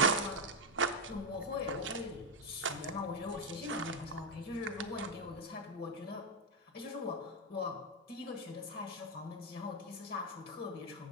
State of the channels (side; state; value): both; normal; correlation 0.04